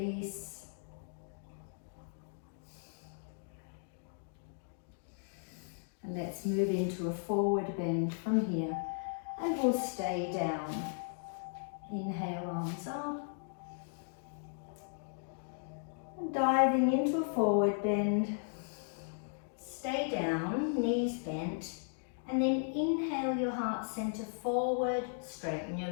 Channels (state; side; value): silent; right; digital silence